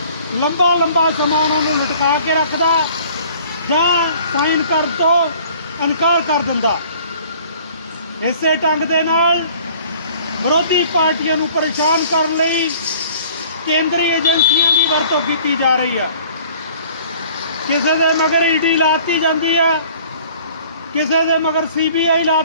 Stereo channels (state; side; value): inverted; both; correlation -0.52